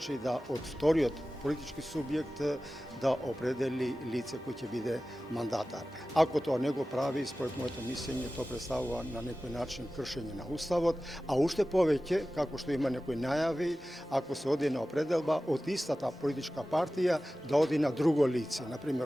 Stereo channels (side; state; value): both; normal; correlation 0.95